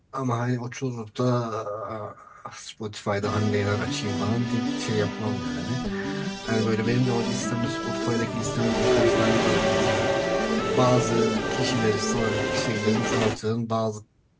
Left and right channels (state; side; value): identical; both; correlation 1.00